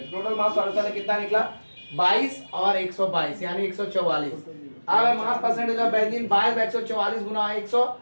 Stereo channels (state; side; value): inverted; both; correlation -1.00